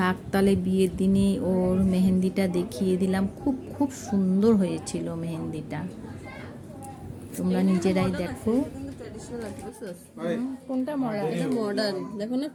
তালে বিয়ের দিনে ওর মেহেন্দিটা দেখিয়ে দিলাম। খুব খুব সুন্দর হয়েছিল মেহেন্দিটা, তোমরা নিজেরাই দেখো। কোনটা মডার্ন দেখো না,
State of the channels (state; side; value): identical; both; correlation 1.00